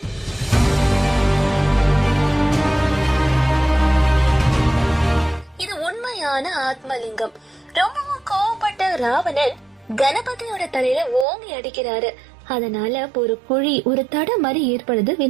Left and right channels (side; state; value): left; drops out; at 11.2 s